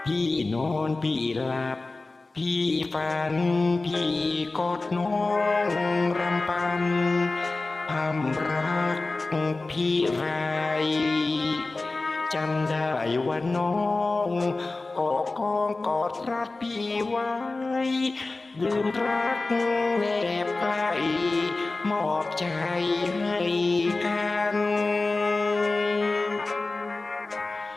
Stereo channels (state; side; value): quieter; right; 3.4 dB